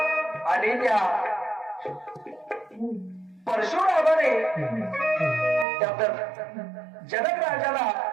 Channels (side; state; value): left; drops out; at 5.7 s